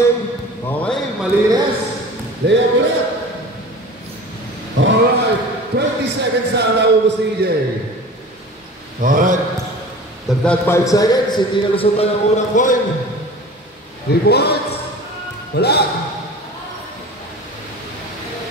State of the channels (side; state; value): both; normal; correlation 0.39